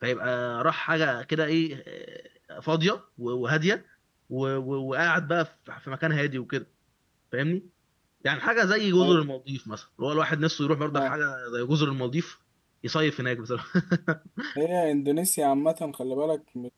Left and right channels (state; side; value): identical; both; correlation 1.00